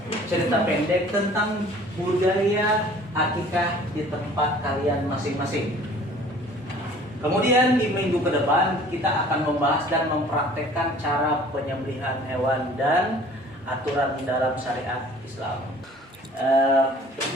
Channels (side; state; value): both; normal; correlation 0.50